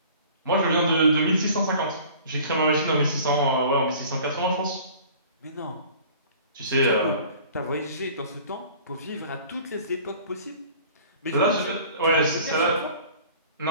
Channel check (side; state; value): both; inverted; correlation -0.47